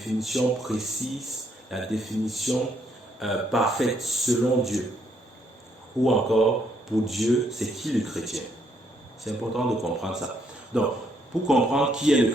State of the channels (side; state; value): both; normal; correlation 0.72